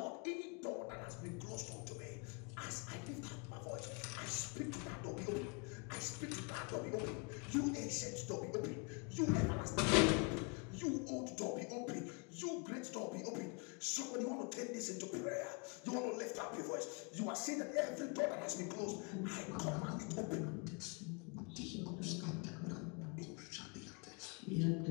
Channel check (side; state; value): right; quieter; 33.6 dB